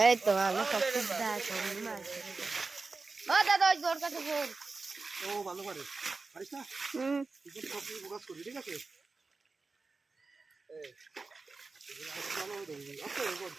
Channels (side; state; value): left; quieter; 3.9 dB